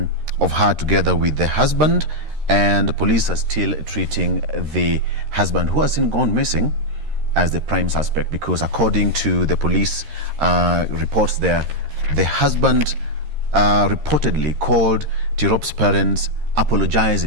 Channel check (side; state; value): left; late; 13 ms